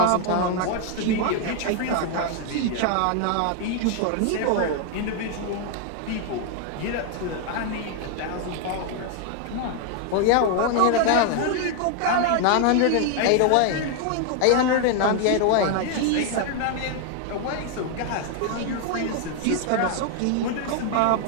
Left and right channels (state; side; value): different; both; correlation 0.00